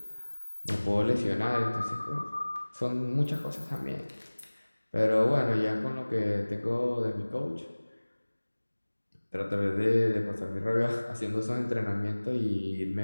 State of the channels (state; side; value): inverted; both; correlation -1.00